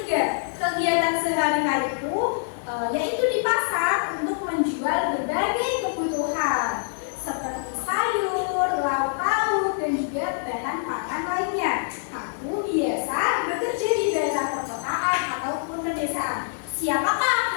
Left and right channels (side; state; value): right; silent; 62 dB below the other